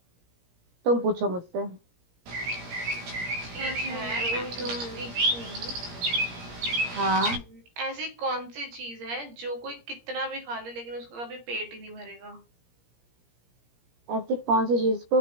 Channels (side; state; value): left; late; 17 ms